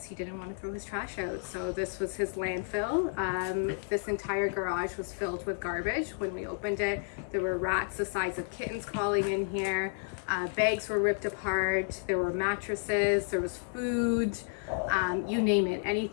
he didn't want to throw his trash out. So this was his landfill. This entire garage was filled with garbage. When we opened it, there were rats the size of kittens crawling in here. Bags were ripped apart. There were mattresses. There was food. You name it.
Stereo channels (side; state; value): right; silent; 57 dB below the other